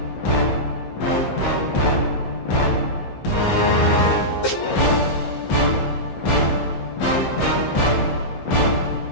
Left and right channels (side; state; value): right; late; 15 ms